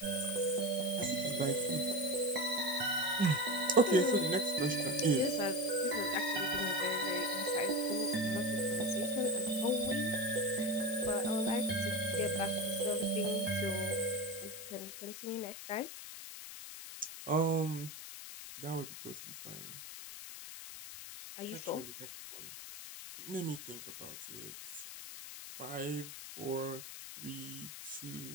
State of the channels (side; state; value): left; noise; hiss, 11 dB below the sound